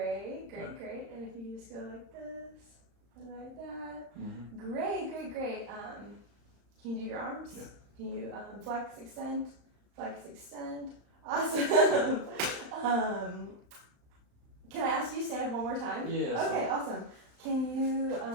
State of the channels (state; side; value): late; left; 35 ms